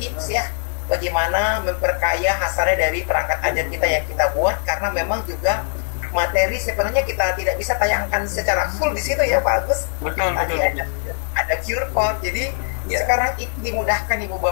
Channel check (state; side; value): silent; right; 63 dB below the other